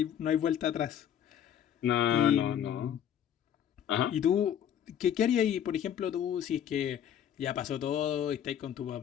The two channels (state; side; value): quieter; right; 9.7 dB